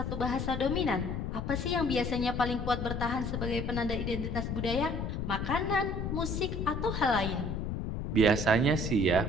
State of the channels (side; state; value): left; noise; rumble, 3 dB below the sound